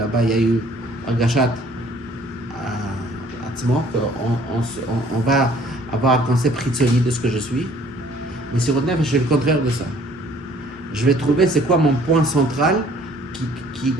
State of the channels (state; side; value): normal; both; correlation 0.57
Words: il y a eu un gachat à Tzmo, qu'on va avoir un concept ritzoni de ce que je suis. Mais sur le nefesh, c'est le contraire de ça. Je vais trouver c'est quoi mon point central